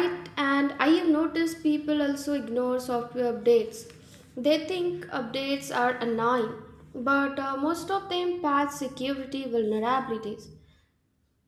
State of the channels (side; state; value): both; identical; correlation 1.00